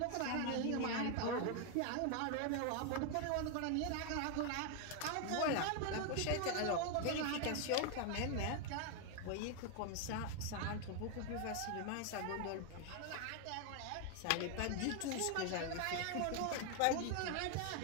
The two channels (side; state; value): both; different; correlation 0.01